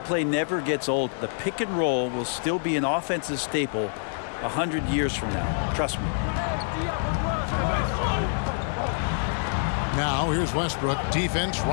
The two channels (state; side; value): silent; right; digital silence